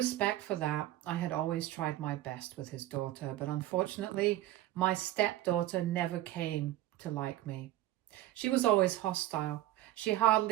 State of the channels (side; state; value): left; quieter; 14.8 dB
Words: for that, I had always tried my best with his daughter, but unfortunately, my stepdaughter never came to like me. She was always hostile. She